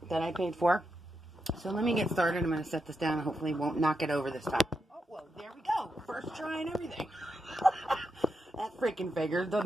that I paid for. So let me get started. I'm going to set this down and hopefully won't knock it over this time. Oh, well, there we go. First try and everything. That freaking figures,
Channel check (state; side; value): normal; both; correlation 0.85